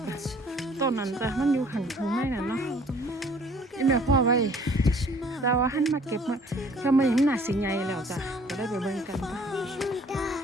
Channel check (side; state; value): both; normal; correlation 0.55